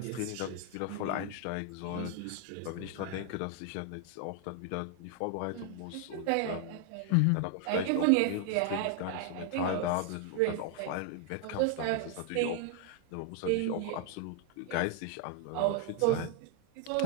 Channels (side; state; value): both; different; correlation 0.01